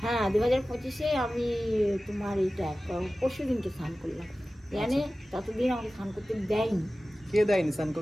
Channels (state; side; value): normal; both; correlation 0.96